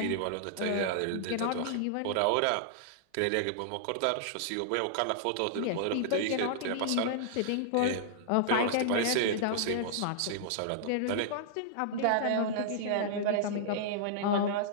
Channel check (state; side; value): different; both; correlation -0.01